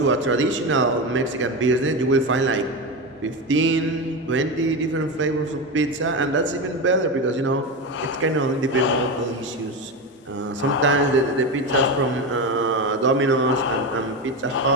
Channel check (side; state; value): both; normal; correlation 0.18